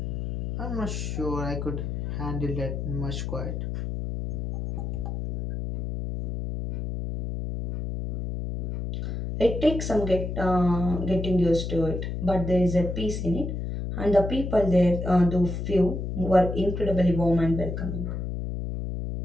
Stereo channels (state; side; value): noise; left; hum, 4 dB below the sound